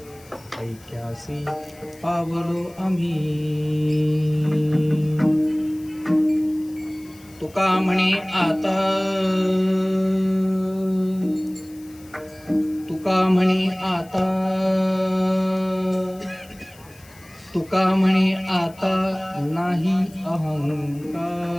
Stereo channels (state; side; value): noise; left; hiss, 25 dB below the sound